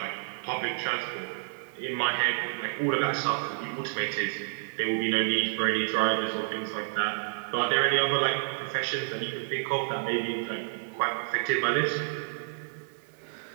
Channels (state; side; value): silent; left; digital silence